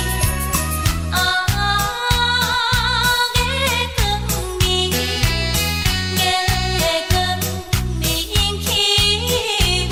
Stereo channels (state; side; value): identical; both; correlation 1.00